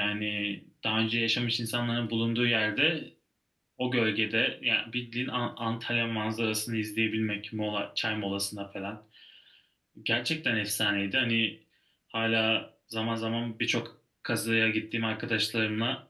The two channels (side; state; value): both; identical; correlation 1.00